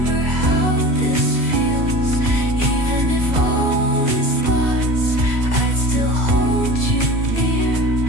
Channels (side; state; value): left; late; 2.0 ms